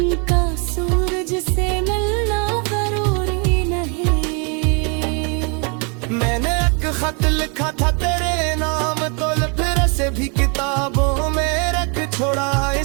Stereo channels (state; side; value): quieter; left; 35.8 dB